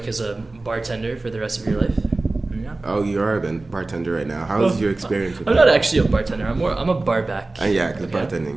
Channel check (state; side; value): quieter; left; 3.1 dB